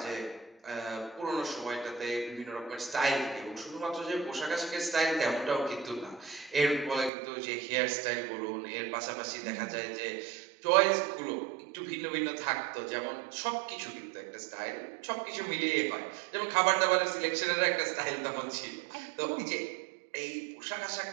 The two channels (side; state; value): left; drops out; at 7.1 s